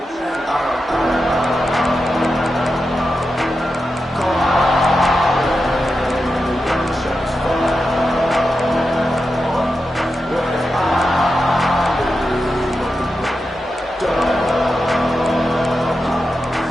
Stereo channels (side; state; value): both; normal; correlation 0.89